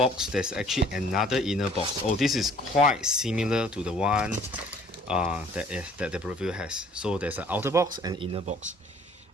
there's actually another inner box. Oh, this is quite similar to the one that the Breville has. So there's an outer box and inner box.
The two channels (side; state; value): both; normal; correlation 0.55